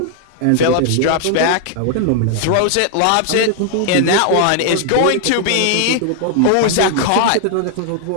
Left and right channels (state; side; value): different; both; correlation 0.00